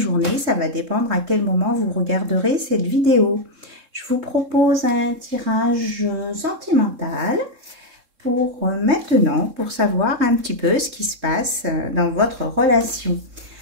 ça va dépendre à quel moment vous regarderez cette vidéo. Je vous propose un tirage sentimental pour maintenant, pour savoir un petit peu ce qui se passe dans votre relation.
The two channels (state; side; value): late; left; 3.7 ms